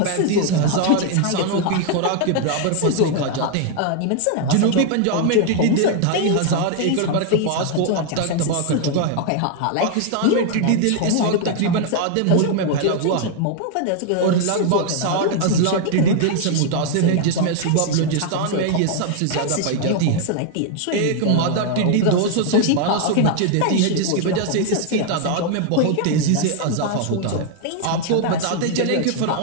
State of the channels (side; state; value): both; different; correlation 0.00